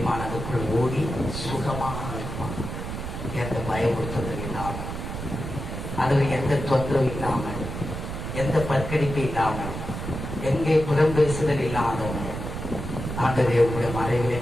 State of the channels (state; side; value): noise; right; rumble, 6 dB below the sound